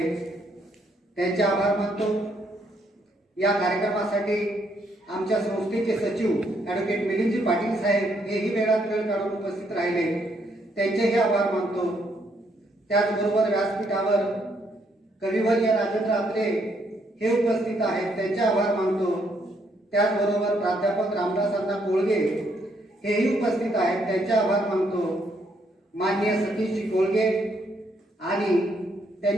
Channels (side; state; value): both; normal; correlation 0.72